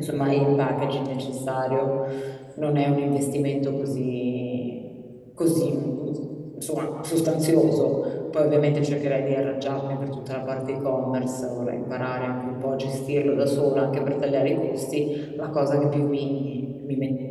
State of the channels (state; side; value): identical; both; correlation 1.00